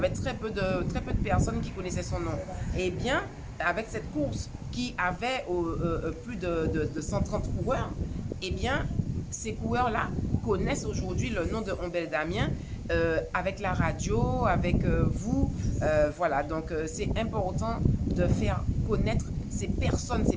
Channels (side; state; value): both; identical; correlation 1.00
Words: très peu de personnes qui connaissaient son nom. Eh bien, avec cette course qui avait plus de 130 coureurs, eh bien, ces coureurs-là connaissent aujourd'hui le nom de Ombel Damien avec la radio, avec vous. Voilà, donc c'est important de faire connaître ces personnes, ces